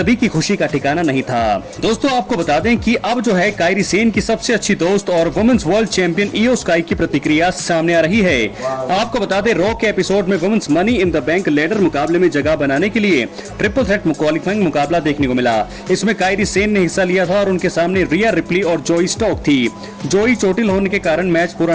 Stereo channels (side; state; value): both; identical; correlation 1.00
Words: की खुशी का ठिकाना नहीं था। दोस्तों आपको बता दें कि अब जो है कायरी सेन की सबसे अच्छी दोस्त और वुमेन्स वर्ल्ड चैंपियन इयो स्काई की प्रतिक्रिया सामने आ रही है। आपको बता दें रॉ के एपिसोड में women's money in the bank ladder मुकाबले में जगह बनाने के लिए ट्रिपल थ्रेट क्वालिफाइंग मुकाबला देखने को मिला। इसमें कायरी सेन ने हिस्सा लिया था और उनके सामने रिया रिप्ली और जोई स्टॉक थी। जोई चोटिल होने के कारण मैच पूरा